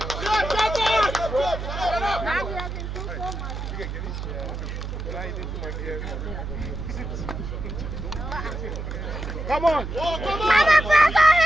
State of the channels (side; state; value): right; noise; hum, 6 dB below the sound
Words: Come on! Press